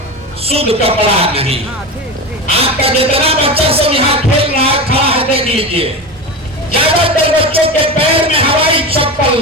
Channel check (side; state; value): both; normal; correlation 0.24